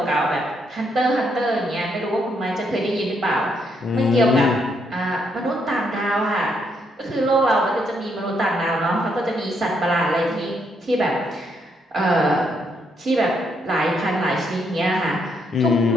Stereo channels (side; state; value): both; normal; correlation 0.75